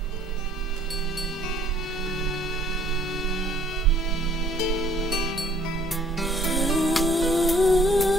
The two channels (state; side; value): noise; right; hum, 20 dB below the sound